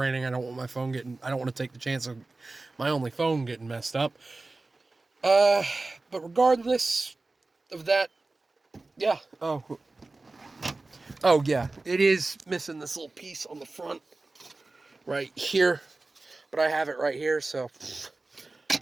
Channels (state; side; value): quieter; left; 3.3 dB